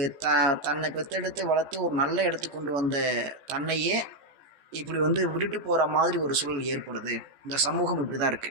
தன்னை பெற்றெடுத்து வளர்த்து ஒரு நல்ல இடத்துக்கு கொண்டு வந்த தன்னையே இப்படி விட்டுட்டு போகிற மாதிரி ஒரு சூழல் ஏற்படுது. இந்த சமூகம் இப்படி தான்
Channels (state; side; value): late; left; 14 ms